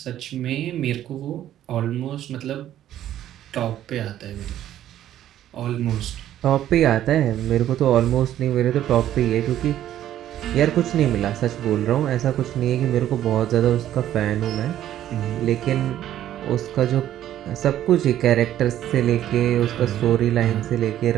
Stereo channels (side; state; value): left; quieter; 12.0 dB